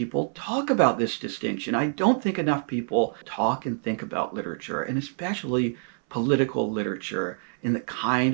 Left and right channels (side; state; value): left; silent; 61 dB below the other